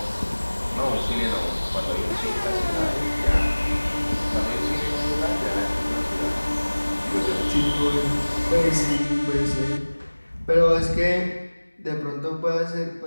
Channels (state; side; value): inverted; both; correlation -1.00